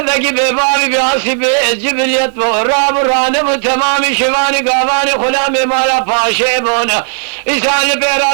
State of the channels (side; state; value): left; silent; digital silence